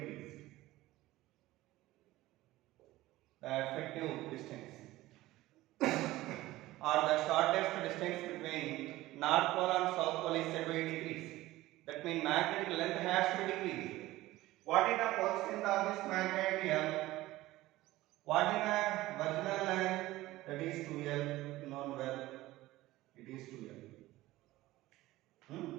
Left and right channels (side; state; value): left; quieter; 17.3 dB